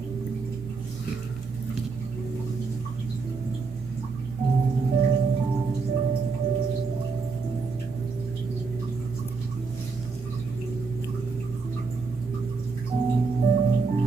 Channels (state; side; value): quieter; left; 4.5 dB